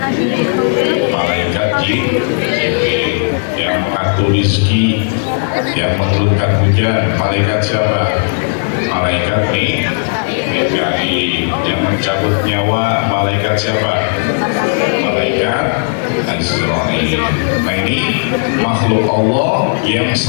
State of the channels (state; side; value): silent; right; digital silence